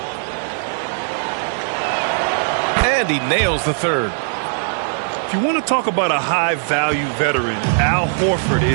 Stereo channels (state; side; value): silent; left; digital silence